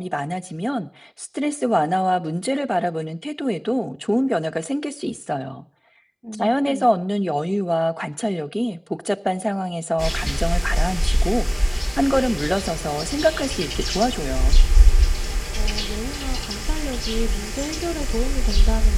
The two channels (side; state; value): both; identical; correlation 1.00